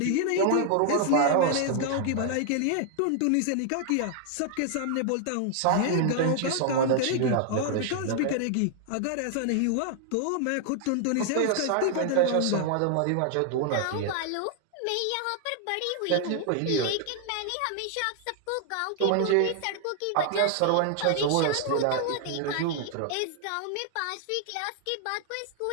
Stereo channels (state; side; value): different; both; correlation 0.00